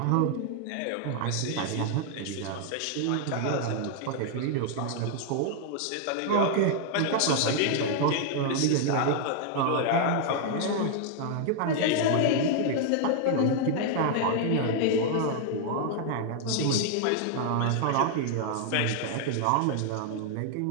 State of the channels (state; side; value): different; both; correlation 0.00